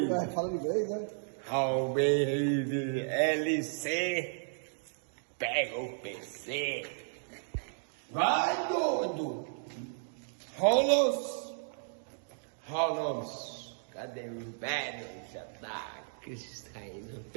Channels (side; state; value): left; silent; digital silence